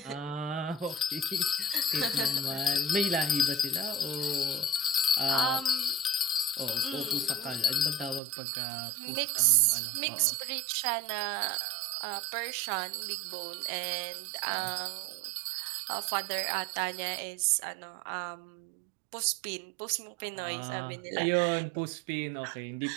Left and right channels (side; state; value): left; drops out; at 8.2 s